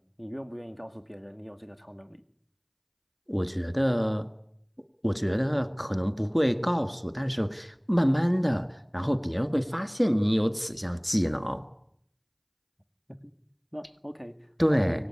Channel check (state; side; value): identical; both; correlation 1.00